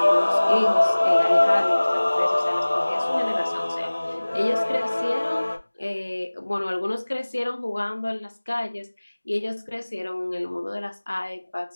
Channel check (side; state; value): both; inverted; correlation -1.00